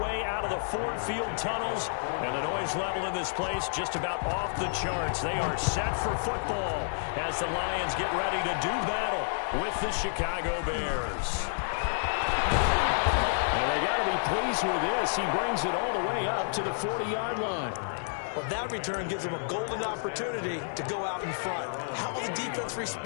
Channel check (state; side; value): silent; right; digital silence